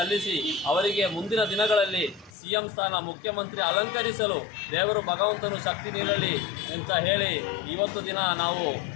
ಅವರಿಗೆ ಮುಂದಿನ ದಿನಗಳಲ್ಲಿ ಸಿಎಂ ಸ್ಥಾನ ಮುಖ್ಯಮಂತ್ರಿ ಅಲಂಕರಿಸಲು ದೇವರು ಭಗವಂತನು ಶಕ್ತಿ ನೀಡಲಿ ಅಂತ ಹೇಳಿ ಇವತ್ತು ದಿನ ನಾವು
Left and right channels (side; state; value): right; drops out; at 2.3 s